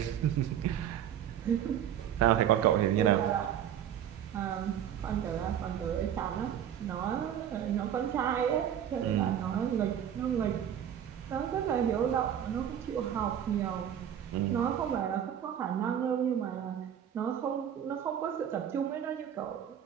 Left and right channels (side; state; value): left; quieter; 9.7 dB